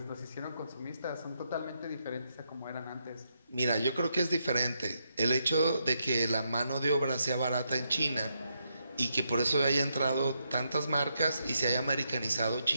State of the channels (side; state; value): both; inverted; correlation -0.80